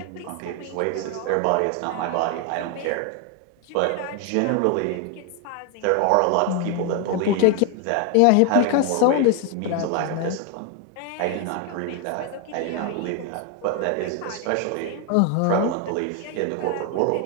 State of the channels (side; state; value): both; different; correlation 0.01